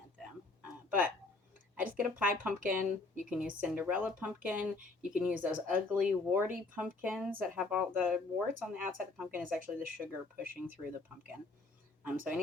them. But I just get a pie pumpkin. You can use Cinderella pumpkin. You can use those ugly, warty pumpkins that have all the warts on the outside of the pumpkin is actually the sugar pushing through the pumpkin. So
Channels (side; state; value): right; quieter; 3.4 dB